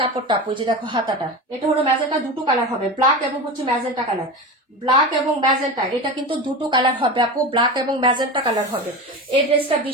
কাপড়টা আপু, এই যে দেখো হাতাটা, এটা হলো ম্যাজেন্টা, দুটো কালার হবে, ব্ল্যাক এবং হচ্ছে ম্যাজেন্টা কালার। ব্ল্যাক এবং ম্যাজেন্টা, এটা কিন্তু দুটো কালার হবে আপু, ব্ল্যাক এবং ম্যাজেন্টা কালার হবে। এই ড্রেসটা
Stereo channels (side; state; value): both; normal; correlation 0.25